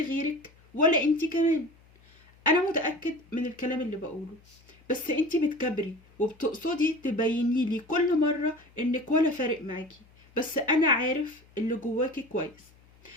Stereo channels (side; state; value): left; noise; hum, 28 dB below the sound